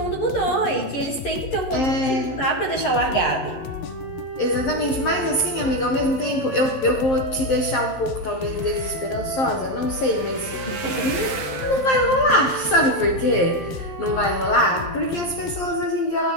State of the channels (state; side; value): late; right; 11 ms